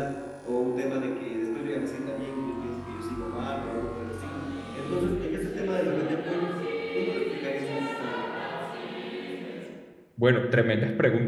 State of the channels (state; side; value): identical; both; correlation 1.00